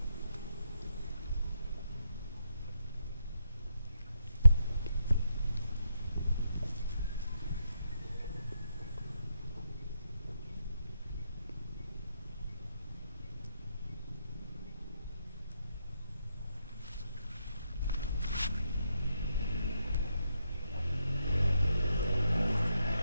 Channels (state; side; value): inverted; both; correlation -0.78